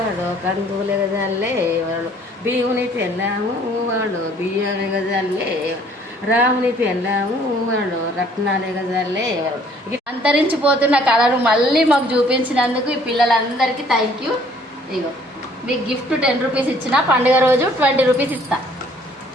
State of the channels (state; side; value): normal; both; correlation 0.59